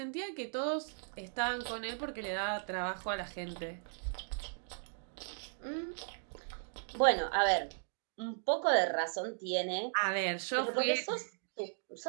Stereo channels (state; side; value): silent; left; digital silence